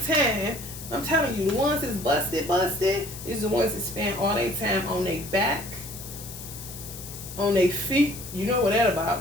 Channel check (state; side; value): noise; left; hiss, 12 dB below the sound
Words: I'm telling you, the ones that's busted is the ones that spend all their time on their back, on their feet. You know what that